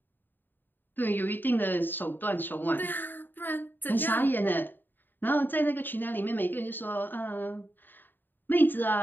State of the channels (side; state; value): right; late; 0.093 ms